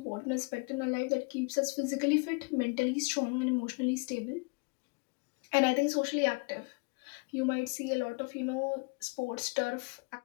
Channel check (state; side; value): quieter; right; 32.1 dB